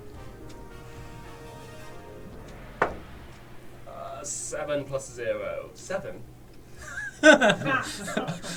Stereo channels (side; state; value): both; identical; correlation 1.00